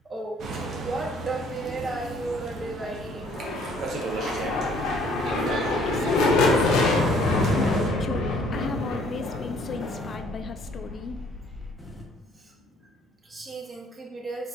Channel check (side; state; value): both; normal; correlation 0.60